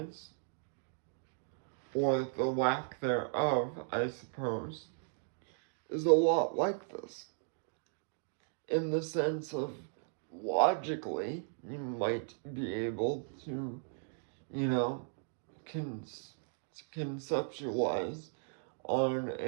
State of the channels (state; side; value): silent; left; digital silence